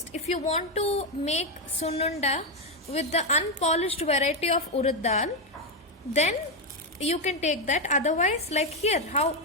If you want to make sununda with the unpolished variety of urad dal, then you can take that. Otherwise, like here, how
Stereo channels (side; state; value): both; normal; correlation 0.05